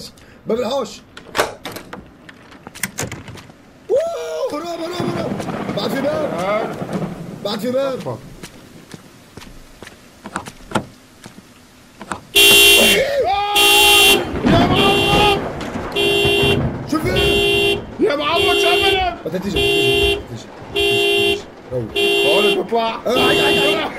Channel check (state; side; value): identical; both; correlation 1.00